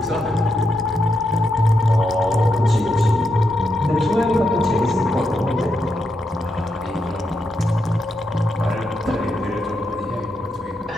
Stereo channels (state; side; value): normal; both; correlation 0.83